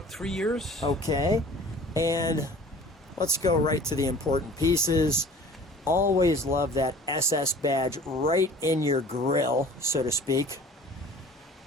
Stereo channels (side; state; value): both; normal; correlation 0.46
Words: 3 years. Okay. And let's go right to the important pieces. Always love that SS badge right in your grill, so to speak.